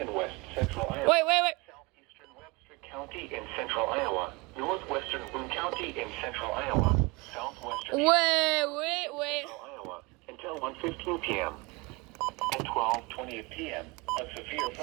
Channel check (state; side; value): quieter; left; 25.7 dB